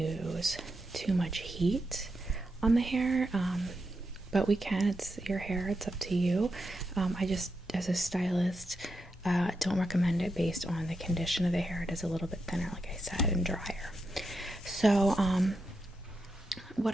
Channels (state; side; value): normal; both; correlation 0.85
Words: too much heat on the hair, but we can. It's your hair, it's up to you. I just, as a stylist, don't recommend it based on the condition of the hair. It is a little bit thinner, like I said, and drier. So what